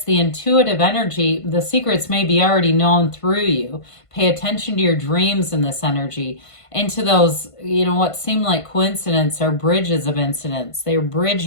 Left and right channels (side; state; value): right; late; 1.5 ms